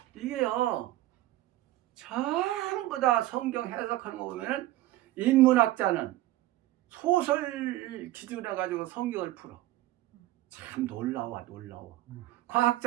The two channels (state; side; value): quieter; left; 16.1 dB